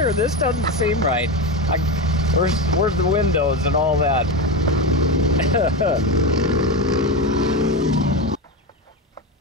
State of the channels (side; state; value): both; normal; correlation 0.17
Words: This doesn't seem right. Where's the windows and all that?